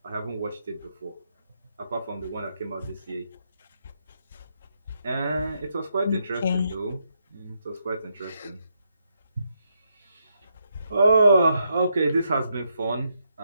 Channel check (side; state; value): both; inverted; correlation -0.79